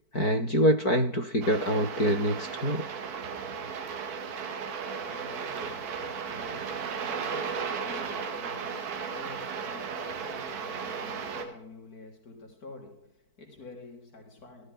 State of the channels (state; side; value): late; right; 4.5 ms